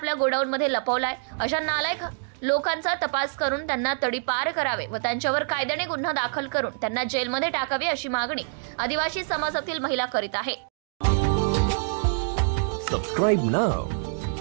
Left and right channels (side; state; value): left; silent; digital silence